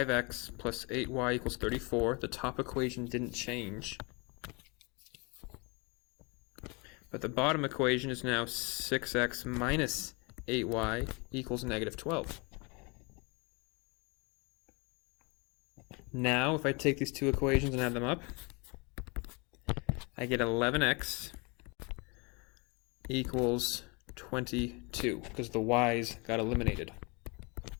plus 8y equals 34. The top equation didn't change. But the bottom equation is now 6x minus 8y equals negative 12. Now, if I take these two equations and add them up, I get 11x equals 22, because the y's got eliminated.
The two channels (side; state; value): right; quieter; 29.8 dB